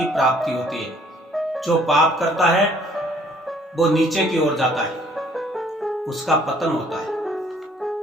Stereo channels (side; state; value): both; normal; correlation 0.60